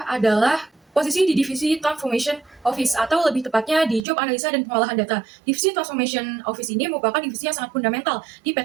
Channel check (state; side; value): drops out; left; at 4.0 s